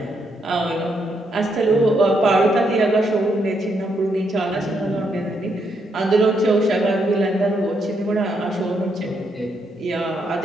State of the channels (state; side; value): normal; both; correlation 0.77